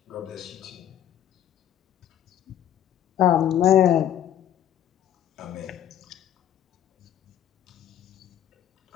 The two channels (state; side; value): quieter; right; 10.9 dB